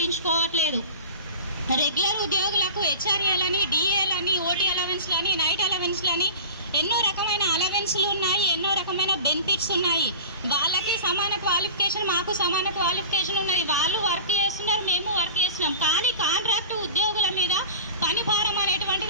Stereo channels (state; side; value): inverted; both; correlation -0.35